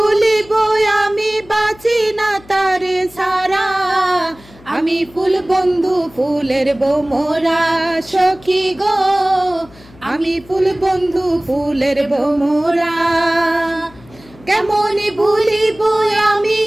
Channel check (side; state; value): left; noise; hum, 24 dB below the sound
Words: আমি, বাঁচি না তারে সারা। আমি ফুল বন্ধু ফুলের বোমরা সখী গো, আমি ফুল বন্ধু ফুলের বোমরা। কেমন ভুলিব আমি,